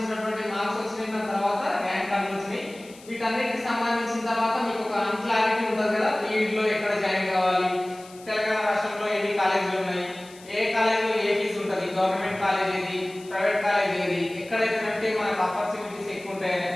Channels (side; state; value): left; noise; hiss, 22 dB below the sound